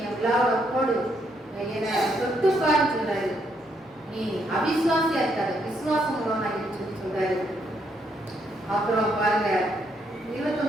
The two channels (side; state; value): both; normal; correlation 0.74